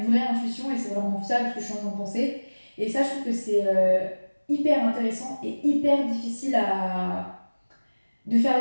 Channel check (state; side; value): inverted; both; correlation -1.00